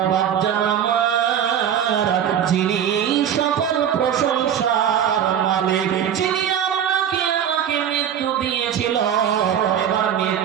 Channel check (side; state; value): left; quieter; 9.2 dB